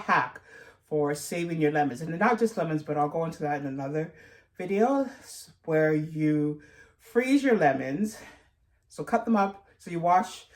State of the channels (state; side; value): identical; both; correlation 1.00